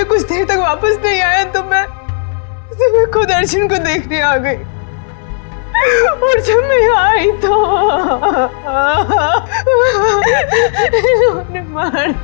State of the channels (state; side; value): silent; right; digital silence